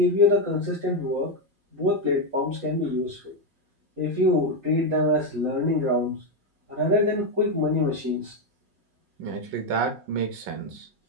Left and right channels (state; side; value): late; left; 5.5 ms